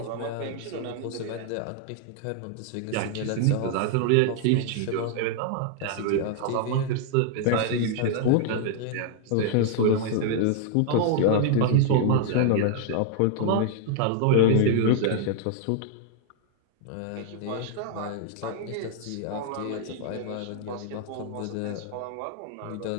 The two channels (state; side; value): different; both; correlation 0.00